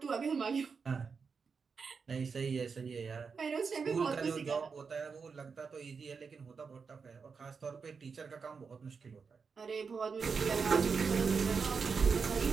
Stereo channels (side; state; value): left; quieter; 5.4 dB